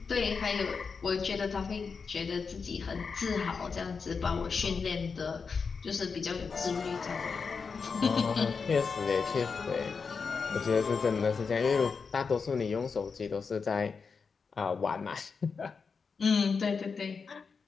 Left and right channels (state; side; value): quieter; right; 5.3 dB